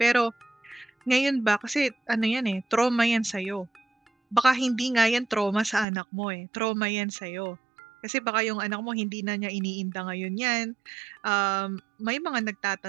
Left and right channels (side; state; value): left; drops out; at 5.9 s